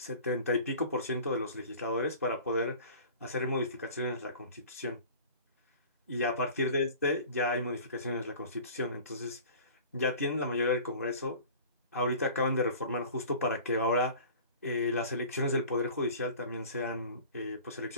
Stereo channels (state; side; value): inverted; both; correlation -0.43